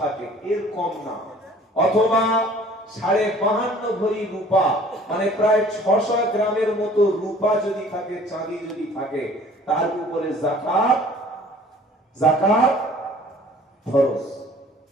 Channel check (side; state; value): both; normal; correlation 0.51